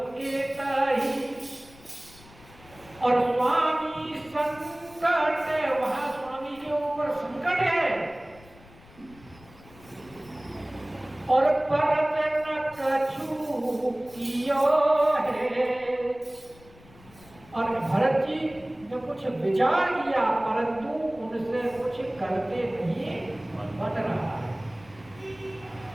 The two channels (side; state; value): left; noise; rumble, 23 dB below the sound